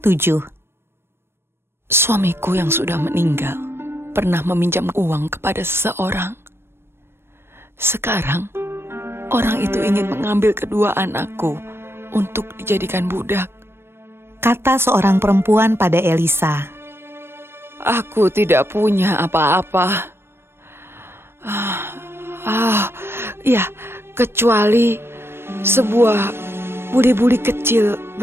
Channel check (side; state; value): left; late; 0.12 ms